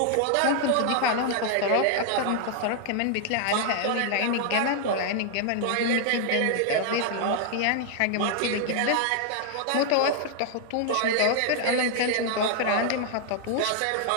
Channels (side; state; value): both; different; correlation 0.00